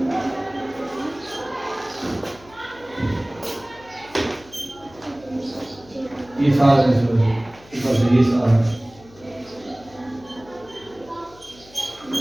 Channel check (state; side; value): noise; left; hum, 24 dB below the sound